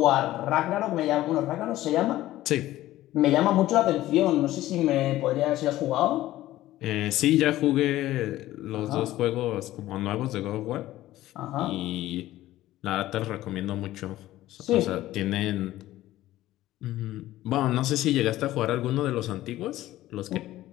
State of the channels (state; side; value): quieter; right; 15.2 dB